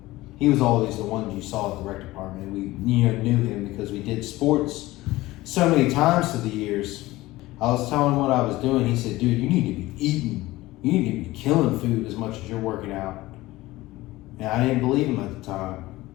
He was always the one you saw at the rec department. We, you know, knew him because we did sports so many times through the years. I was telling him what I was doing. He said, dude, you need to be eating. You need to be killing food as much as you're working out. And I didn't believe him at the time.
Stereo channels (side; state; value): right; quieter; 18.4 dB